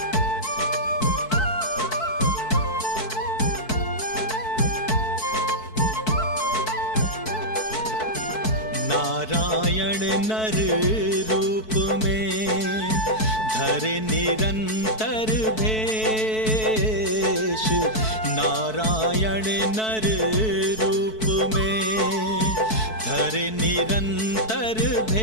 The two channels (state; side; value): late; right; 4.6 ms